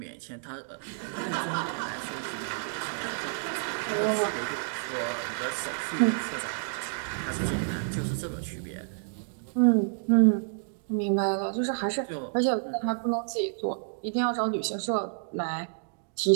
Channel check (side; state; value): left; silent; digital silence